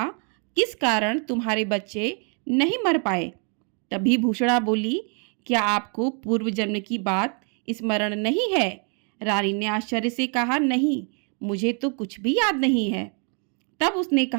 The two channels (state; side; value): quieter; left; 39.0 dB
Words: किस कारण तुम्हारे बच्चे नहीं मर पाए? तभी भूषणा बोली, क्या आपको पूर्व जन्म की बात स्मरण नहीं है? रानी ने आश्चर्य से कहा, नहीं, मुझे तो कुछ भी याद नहीं है। तब उसने